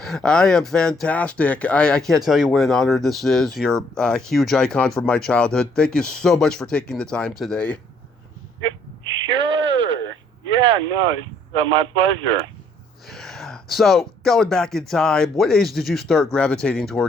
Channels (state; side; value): normal; both; correlation 0.65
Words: I am fantastic. I can't tell you what an honor this is. You're a huge icon from my childhood. Thank you so much for taking the time today. Sure. Yeah, no, it's my pleasure. So, going back in time, what age did you start gravitating